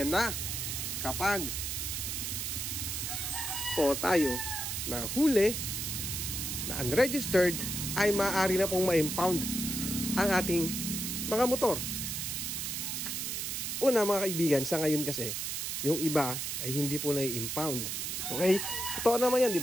na kapag po tayo na huli na unregistered ay maaari na pong ma-impound ang ating mga motor. Una mga kaibigan, sa ngayon kasi yung iba ay hindi po na-impound. Okay? Totoo naman yan, di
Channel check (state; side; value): noise; right; hiss, 3 dB below the sound